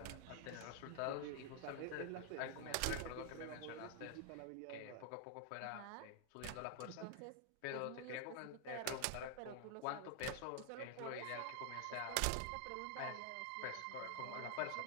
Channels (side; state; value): both; different; correlation 0.00